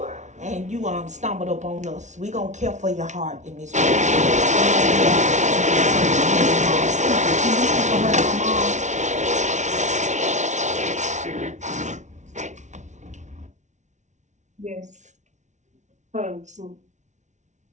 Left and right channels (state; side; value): late; left; 0.34 ms